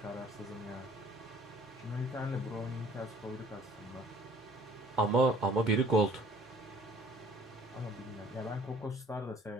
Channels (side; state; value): both; normal; correlation 0.54